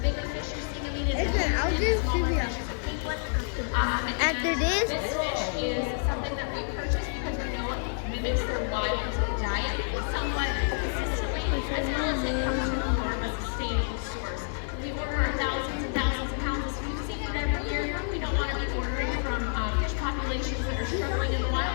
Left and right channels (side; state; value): right; silent; digital silence